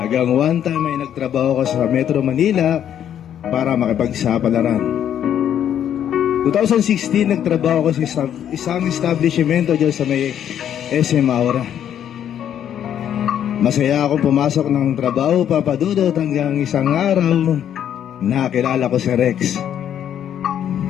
one time ay nagtrabaho ko sa Metro Manila para makipagsapalaran. 2016, nagtrabaho ko sa isang establishmento dyan sa may SM Aura. Masaya akong pumasok ng trabaho, Papa Dudut, hanggang isang araw, nakilala ko si Rex.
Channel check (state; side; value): quieter; right; 9.8 dB